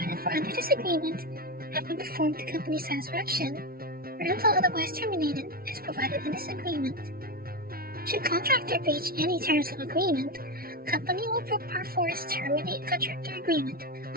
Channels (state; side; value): late; left; 0.43 ms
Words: for under this agreement have been performed to company's satisfaction or until otherwise terminated as provided in this agreement. Should contractor breach any terms of agreement, company will perforce terminate contractor agreement,